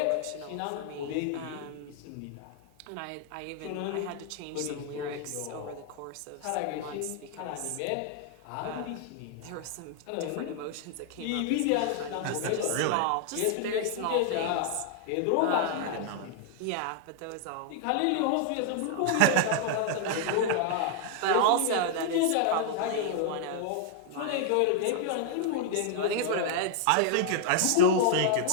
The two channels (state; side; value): different; both; correlation 0.00